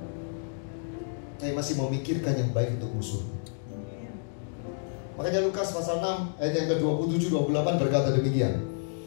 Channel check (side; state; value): right; silent; digital silence